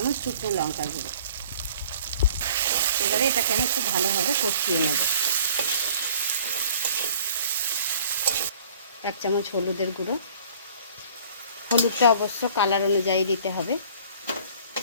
শুকনো লঙ্কা গুঁড়ো। এবারে এটাকে আমি খুব ভালোভাবে কষিয়ে নেব। 1 চামচ হলুদের গুঁড়ো, হলুদটা অবশ্য কালার অনুযায়ী দিতে হবে।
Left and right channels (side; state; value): both; inverted; correlation -0.51